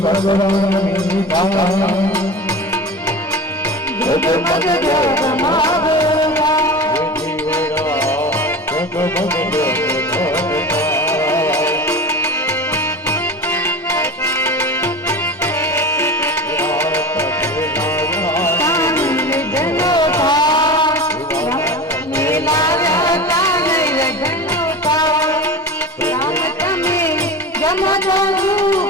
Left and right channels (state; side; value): normal; both; correlation 0.32